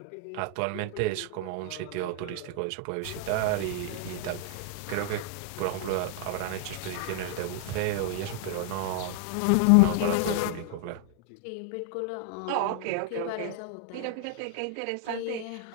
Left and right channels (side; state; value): both; different; correlation 0.00